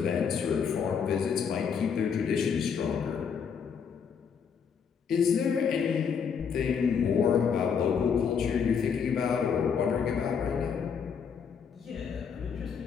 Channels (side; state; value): right; quieter; 6.7 dB